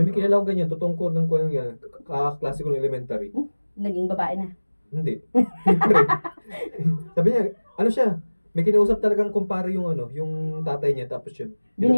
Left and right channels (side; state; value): both; inverted; correlation -1.00